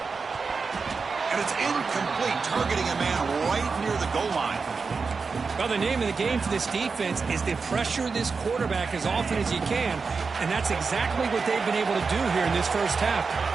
And it's incomplete, targeting a man right near the goal line. Well, the name of the game for this defense is to pressure this quarterback as often as you can, and that's exactly what they've been able to do here in this first half.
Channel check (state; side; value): quieter; left; 4.8 dB